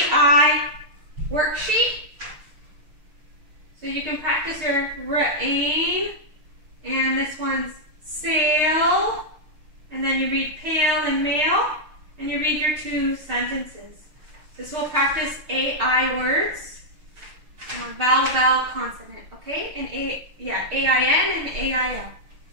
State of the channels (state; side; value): late; left; 6.5 ms